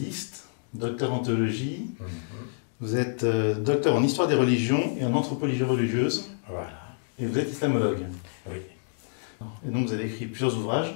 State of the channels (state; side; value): silent; right; digital silence